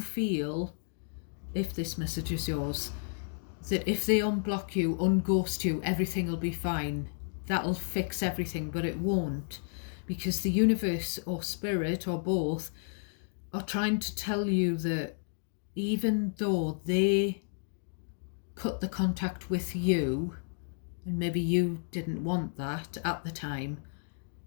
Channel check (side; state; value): right; silent; digital silence